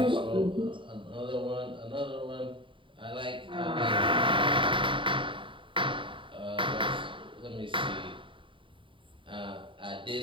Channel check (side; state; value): left; late; 0.25 ms